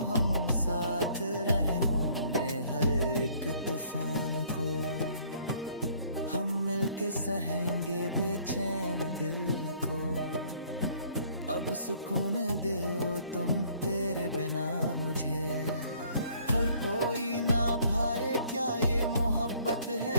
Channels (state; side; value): inverted; both; correlation -0.60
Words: हम साथ रहे होंगे हर एक तूफान को। हम मिलके सहेंगे बेचैन दिल को। अब सुकून दो तुम तेरे बिना मुझे। हर कोई ना भाए क्या ये मोहब्बत